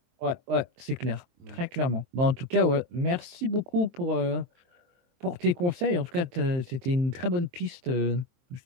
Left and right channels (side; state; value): left; late; 23 ms